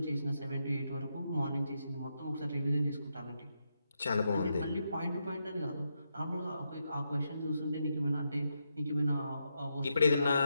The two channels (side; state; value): both; inverted; correlation -0.83